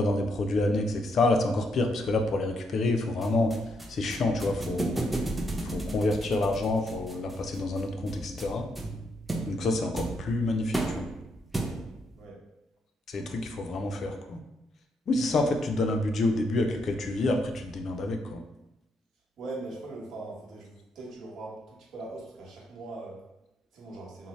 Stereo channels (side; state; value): both; normal; correlation 0.77